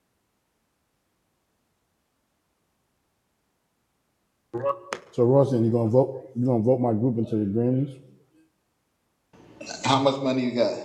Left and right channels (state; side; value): identical; both; correlation 1.00